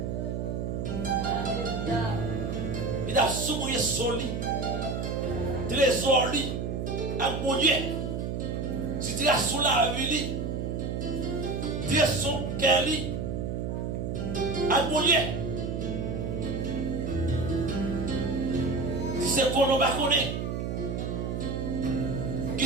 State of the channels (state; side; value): noise; right; hum, 2 dB below the sound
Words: Il a souillé son lit. Trésor lit. Avec mon Dieu. Si tu as sous la vie, tu as son cœur lit. Avec mon Dieu. Si c'est qu'on ne va connaître.